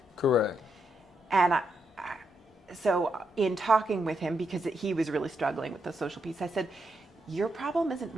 Correct. And so in talking with him, because he was really struggling with the social piece, I said, your problem isn't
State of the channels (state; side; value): normal; both; correlation 0.81